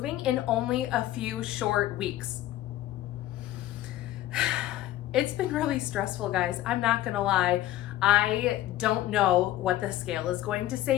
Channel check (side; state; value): right; quieter; 14.4 dB